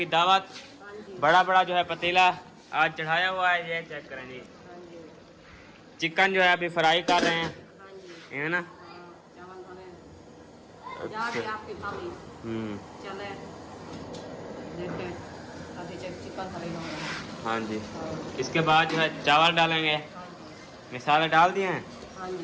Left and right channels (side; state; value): both; identical; correlation 1.00